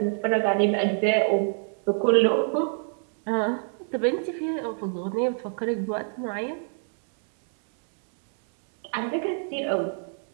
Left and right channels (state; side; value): silent; left; 60 dB below the other